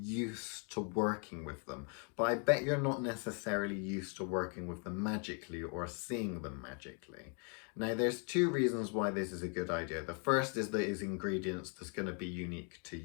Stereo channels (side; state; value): right; quieter; 39.5 dB